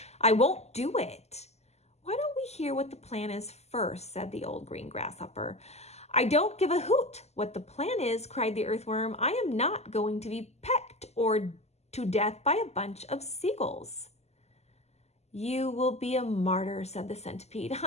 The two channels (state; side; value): late; right; 0.31 ms